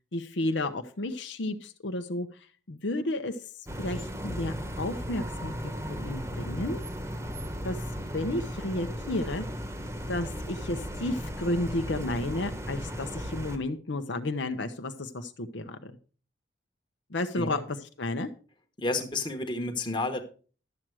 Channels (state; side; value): normal; both; correlation 0.48